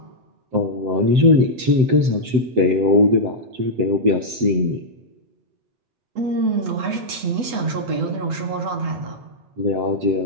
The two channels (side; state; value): left; late; 8.1 ms